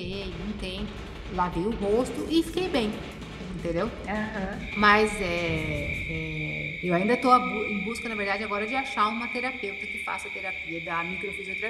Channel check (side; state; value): both; identical; correlation 1.00